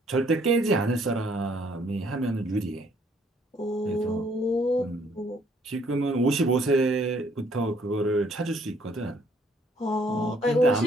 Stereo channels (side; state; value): both; normal; correlation 0.64